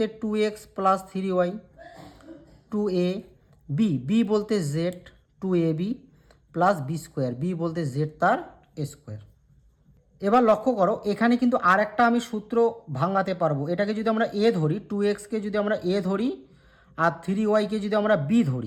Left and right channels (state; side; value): identical; both; correlation 1.00